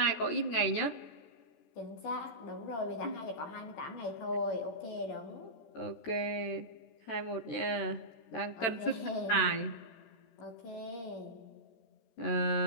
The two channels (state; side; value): late; right; 13 ms